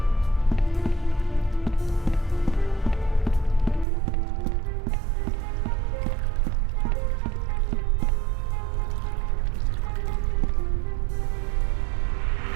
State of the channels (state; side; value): drops out; left; at 3.9 s